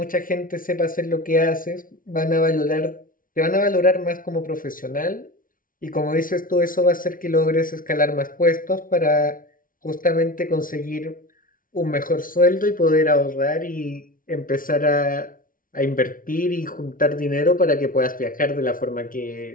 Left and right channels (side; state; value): right; late; 0.40 ms